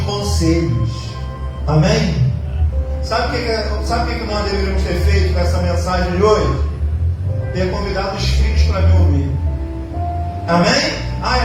conselhos. Amém? Sabe o que nós deveríamos ter feito com essa mensagem de hoje? Ter convidado os filhos para me ouvir. Amém?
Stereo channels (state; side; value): identical; both; correlation 1.00